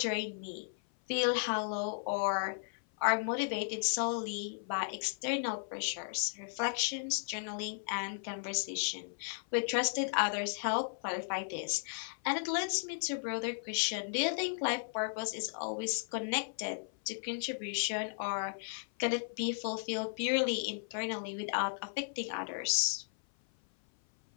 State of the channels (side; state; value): right; silent; 54 dB below the other